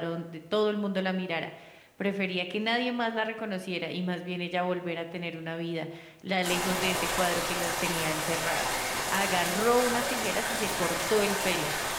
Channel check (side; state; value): both; identical; correlation 1.00